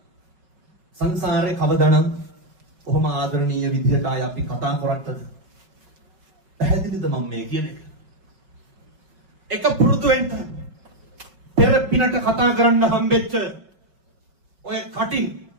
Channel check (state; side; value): late; left; 5.3 ms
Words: සංසාරේ කවදානම් කොහොම ආදරණීය විදිහට ආය අපි කතා කරත්තද පැහැදිලිද මම මේ කියන එක පුරුදු වෙන්න පෙර පිනට කතා කරන්න හම්බෙච්ච ඔය කටින්